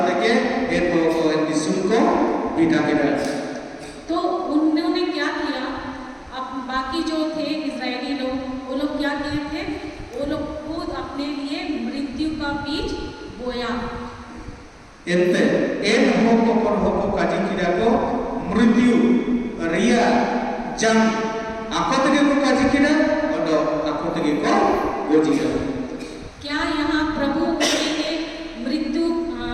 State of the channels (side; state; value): both; identical; correlation 1.00